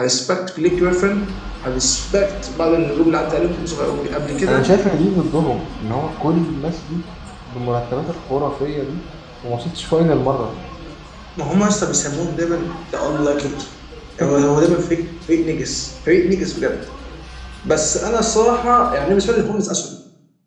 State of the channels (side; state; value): both; identical; correlation 1.00